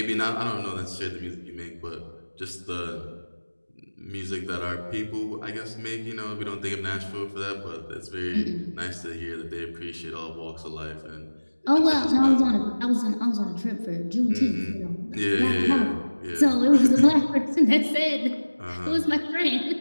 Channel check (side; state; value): both; inverted; correlation -1.00